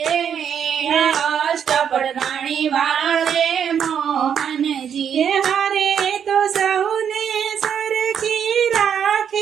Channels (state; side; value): quieter; left; 8.2 dB